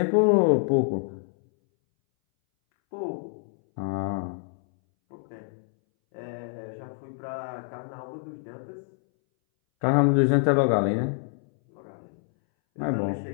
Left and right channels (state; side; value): silent; right; 60 dB below the other